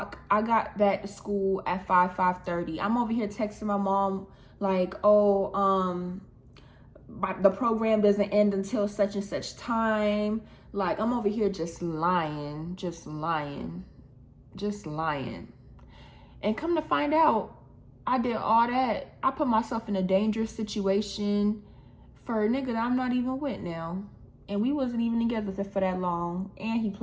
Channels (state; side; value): identical; both; correlation 1.00